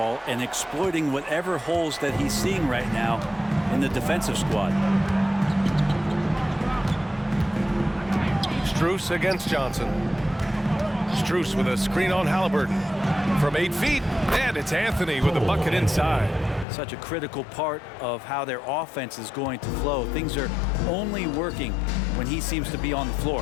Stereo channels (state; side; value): drops out; right; at 16.7 s